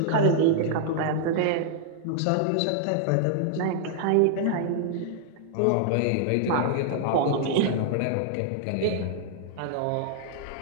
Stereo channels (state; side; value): different; both; correlation -0.01